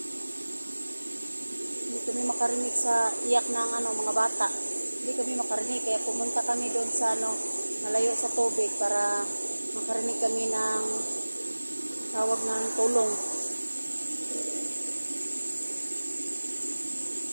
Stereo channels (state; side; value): inverted; both; correlation -1.00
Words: Hindi kami makarinig sa iyak ng mga bata. Hindi kami makarinig, kaya pumunta kami doon sa malayo sa tubig para makarinig kami ng tawag ng tulong.